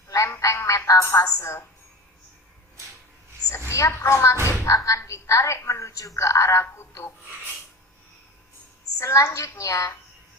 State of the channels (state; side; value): normal; both; correlation 0.31